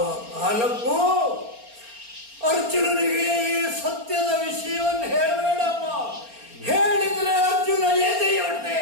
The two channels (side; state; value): left; late; 4.3 ms